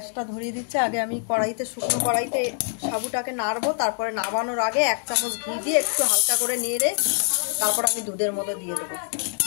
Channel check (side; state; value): right; silent; 62 dB below the other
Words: ধরিয়ে দিচ্ছে। আগে আমি কড়াইতে, শুকনো কড়াইতে সাবুটাকে নাড়বো, তারপরে নামানোর আগে 1 চামচ ঘি দিয়ে একটু হালকা করে নেড়ে তারপর আমি দুধের মধ্যে দিয়ে দেবো।